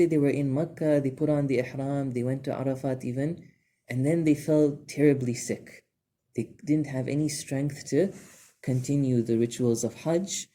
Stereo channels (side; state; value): both; identical; correlation 1.00